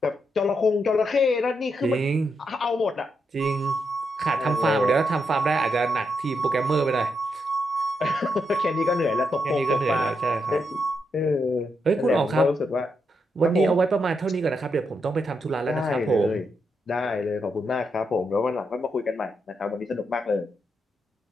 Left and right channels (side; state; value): both; normal; correlation 0.82